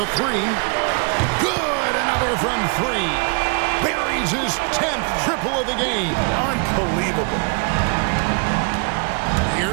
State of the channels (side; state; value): left; quieter; 34.4 dB